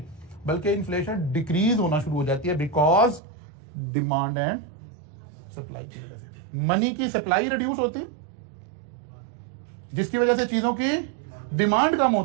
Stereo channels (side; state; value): left; drops out; at 3.2 s